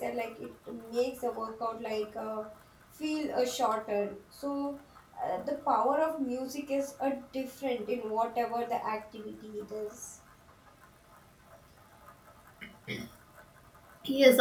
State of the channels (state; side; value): identical; both; correlation 1.00